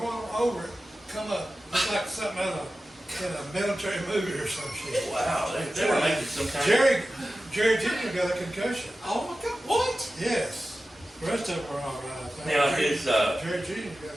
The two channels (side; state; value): both; normal; correlation 0.94